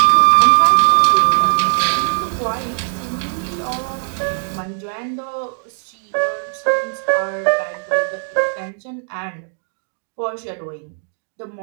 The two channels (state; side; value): silent; left; digital silence